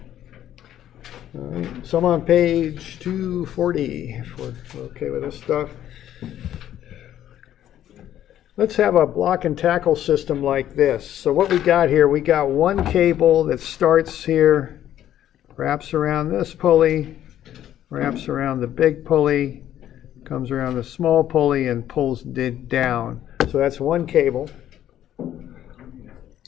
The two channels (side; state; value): right; quieter; 11.6 dB